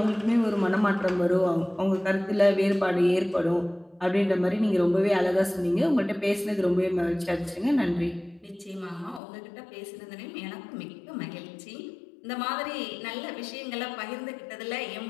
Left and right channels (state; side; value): drops out; right; at 9.2 s